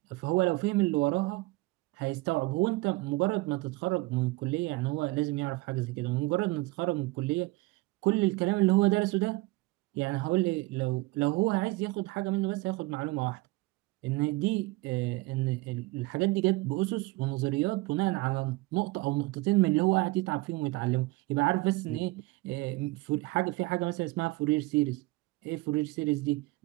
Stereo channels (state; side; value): quieter; left; 21.7 dB